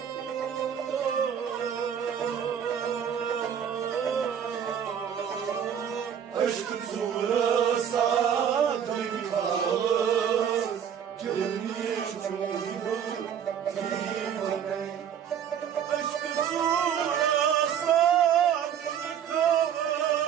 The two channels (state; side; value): quieter; left; 8.6 dB